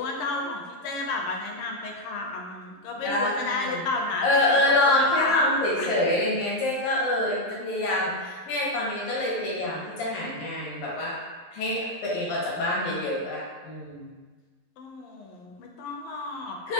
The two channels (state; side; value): late; right; 11 ms